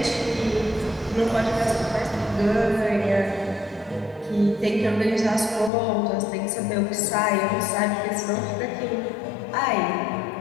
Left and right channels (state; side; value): drops out; right; at 5.7 s